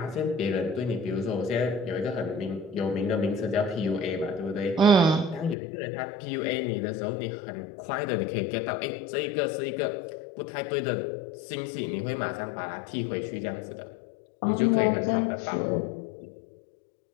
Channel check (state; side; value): drops out; right; at 5.6 s